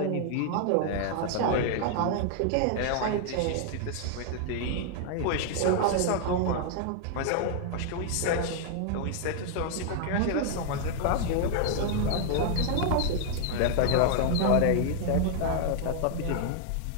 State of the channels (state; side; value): different; both; correlation 0.00